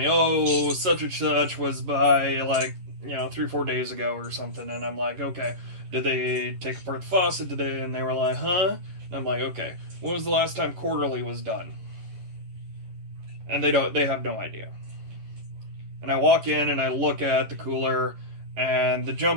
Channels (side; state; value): left; late; 11 ms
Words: oh, such and such was by 3-4 days ago or something, and I'm like, okay, did they take apart the faucet? And they were like, huh? And I'm like, okay, when was the last time quarterly was done? And they have no idea. And I walk in and I look at the cooler, and the